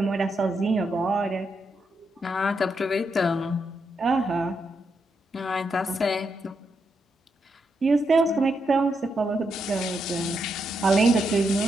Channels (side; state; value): both; normal; correlation 0.81